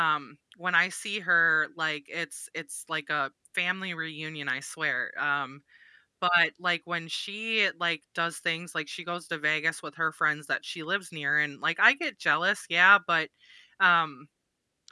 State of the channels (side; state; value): both; identical; correlation 1.00